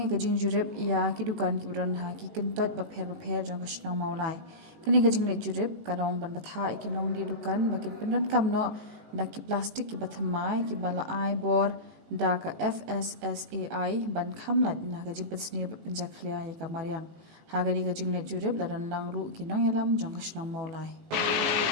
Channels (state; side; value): late; left; 18 ms